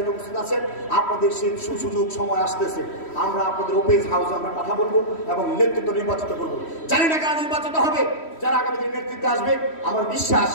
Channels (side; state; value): right; late; 3.1 ms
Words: উপস্থিত আছেন, আপনাদের সেই সুযোগ সময় আসতেছে, আমরা আপনাদের ওপেন হাউসে আমরা কথা বলবো এবং নেতৃত্ব নির্বাচিত করবো। জানি না কারা নির্বাচিত হবে, যারা আগামী দিনে নেতৃত্বে আসবে, আমার বিশ্বাস